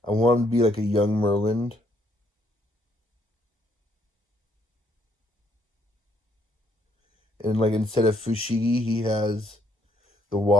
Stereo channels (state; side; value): normal; both; correlation 0.69